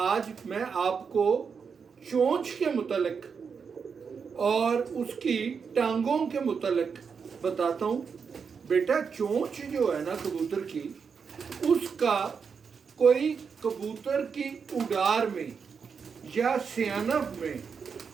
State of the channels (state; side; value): quieter; left; 6.0 dB